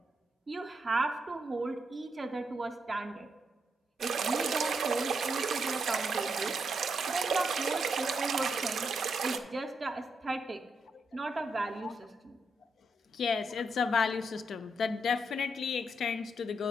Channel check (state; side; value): normal; both; correlation 0.80